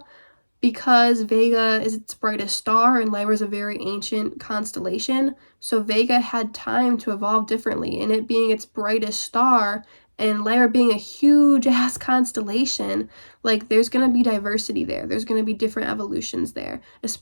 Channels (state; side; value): inverted; both; correlation -1.00